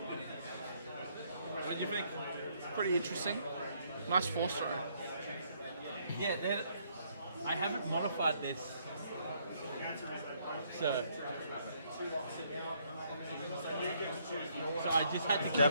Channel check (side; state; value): both; inverted; correlation -0.69